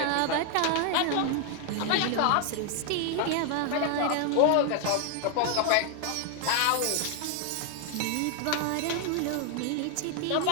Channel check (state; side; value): different; both; correlation 0.00